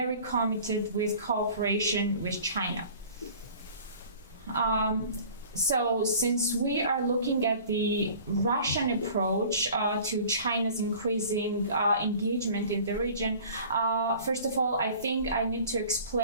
committed with cooperation with China. So since we are looking at the Russian approach to China's increasing engagement in the region, first of all, I think I need to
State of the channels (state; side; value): inverted; both; correlation -0.46